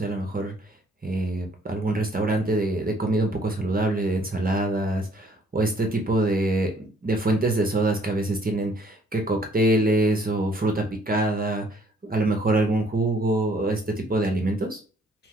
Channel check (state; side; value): normal; both; correlation 0.62